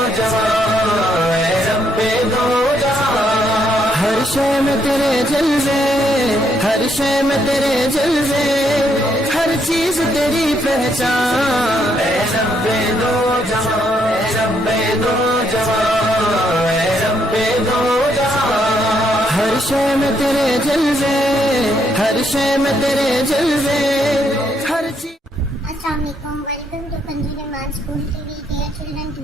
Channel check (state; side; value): normal; both; correlation 0.74